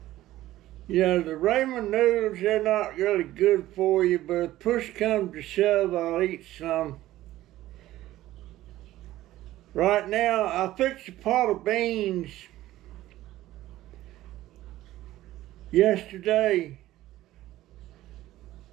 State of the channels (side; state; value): left; quieter; 15.2 dB